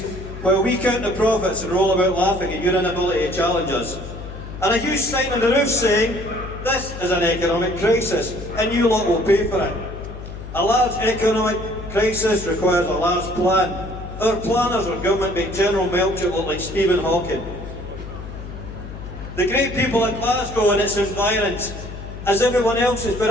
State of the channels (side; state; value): left; noise; hum, 11 dB below the sound